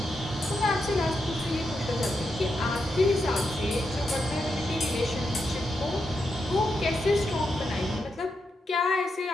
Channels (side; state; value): both; normal; correlation 0.85